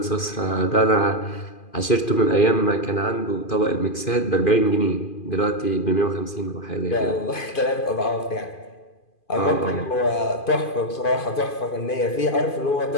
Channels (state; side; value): late; right; 2.5 ms